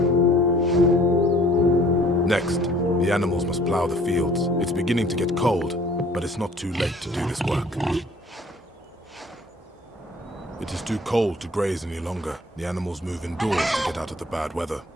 Next, the animals must plow the fields. It's beginning to get cold, but it's not too late to do this work. It is too cold to graze any longer. The animals move indoors to get out of the bad weather.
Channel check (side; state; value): both; normal; correlation 0.54